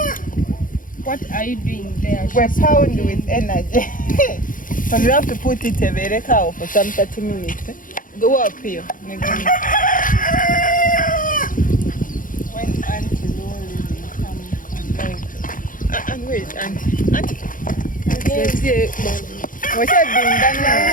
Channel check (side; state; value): right; late; 0.39 ms